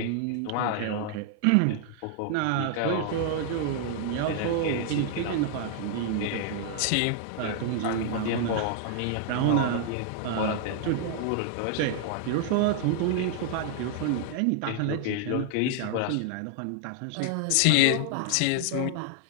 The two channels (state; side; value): different; both; correlation -0.01